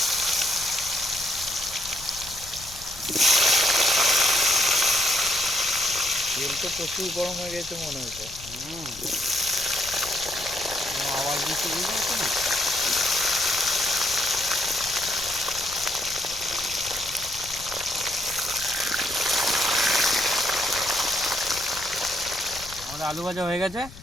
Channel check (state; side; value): noise; left; rumble, 17 dB below the sound